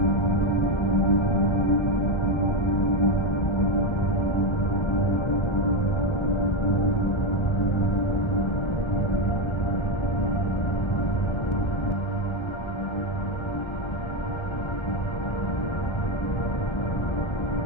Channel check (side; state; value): right; late; 1.3 ms